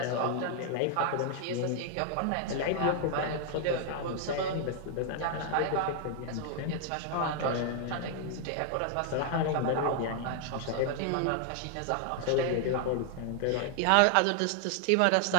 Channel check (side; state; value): both; different; correlation 0.00